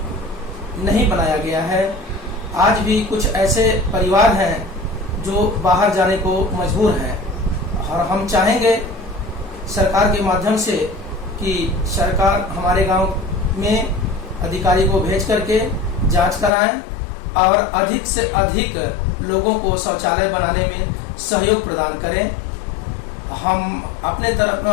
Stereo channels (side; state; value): right; drops out; at 16.5 s